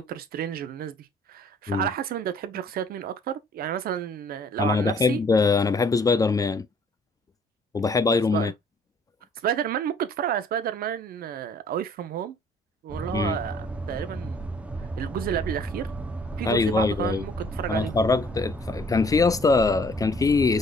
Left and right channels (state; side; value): normal; both; correlation 0.58